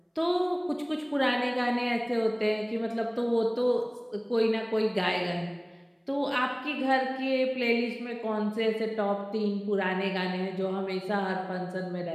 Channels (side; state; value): both; identical; correlation 1.00